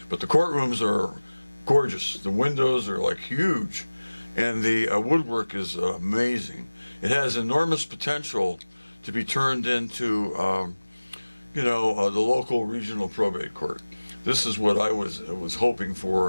the courtrooms are gorgeous. The windows are like huge, and the woodwork is amazing. It has enormous potential to be turned into the local regional probate court. This is what I was hoping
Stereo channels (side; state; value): both; inverted; correlation -1.00